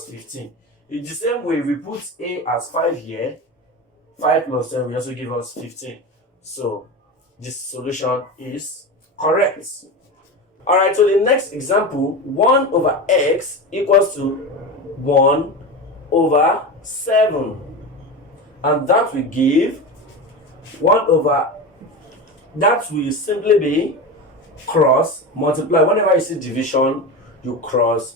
15. In the same way, we put a as 5 here. 5 plus 10 will also give us 15. So this solution is correct. Alright, so the next example, 1 over x equals to 1 over 7. And that will give 1 over, that will simply be cross multiply. Whenever you see division, you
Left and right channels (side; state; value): both; normal; correlation 0.24